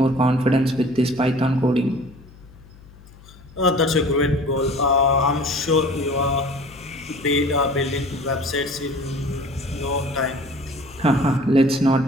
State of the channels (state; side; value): noise; left; hum, 22 dB below the sound